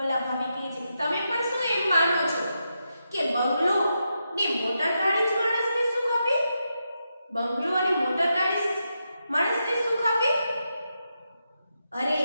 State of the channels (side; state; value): both; inverted; correlation -0.85